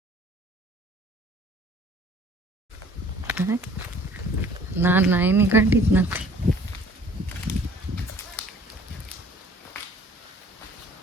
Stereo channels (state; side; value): normal; both; correlation 0.53